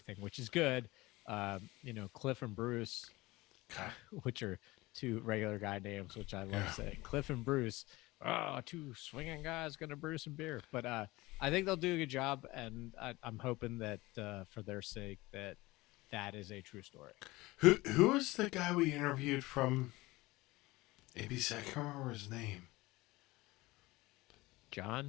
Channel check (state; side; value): quieter; right; 20.5 dB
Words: which is good. Cliff and Bruce, which are two regular guy names, which I love saying. Cliff and Bruce, two swinging guys gonna brew some beer. But I think they'll do a good job, and I'm hoping that for their sake that is a true story. Who is the guy we interviewed from ABC? I can't remember his name.